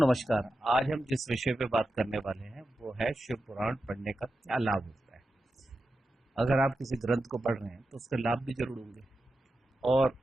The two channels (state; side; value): normal; both; correlation 0.90